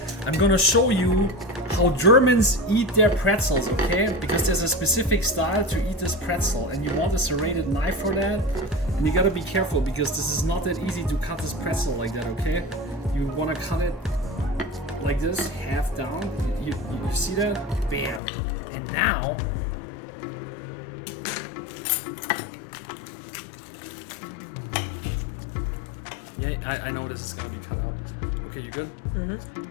I'm gonna show you how Germans eat their pretzels, okay? Because there's a specific style to eat this pretzel, and you want a serrated knife for that. And you gotta be careful because this is not that easy to cut this pretzel like that, okay? You wanna cut it like this, half down. You see that? Bam. And now, yeah, I know this is gonna be cut out. Okay, you good?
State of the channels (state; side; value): drops out; right; at 18.2 s